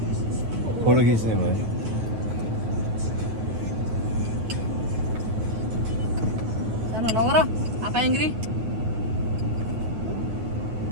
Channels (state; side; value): late; left; 9.1 ms